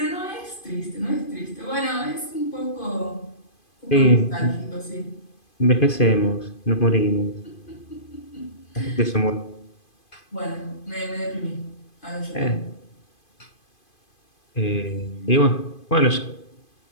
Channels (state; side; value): late; right; 2.5 ms